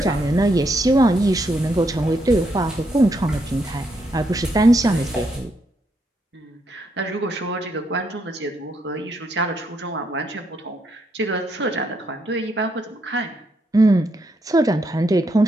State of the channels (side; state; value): both; normal; correlation 0.77